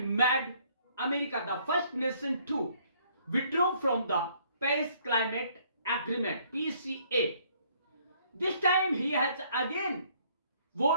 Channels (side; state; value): both; inverted; correlation -0.63